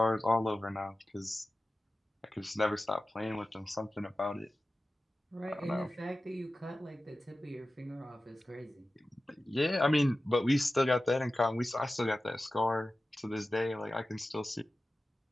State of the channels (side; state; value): both; normal; correlation 0.95